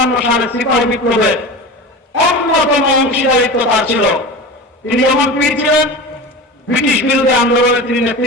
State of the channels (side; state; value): both; normal; correlation 0.30